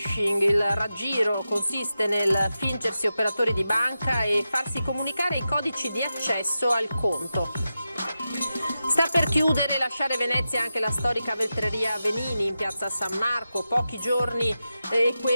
Il raggiro consiste nel fingersi operatori di banca e farsi comunicare i codici di accesso al conto. Sta per chiudere e lasciare Venezia anche la storica vetreria Venini in piazza San Marco. Pochi giorni e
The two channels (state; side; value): inverted; both; correlation -0.90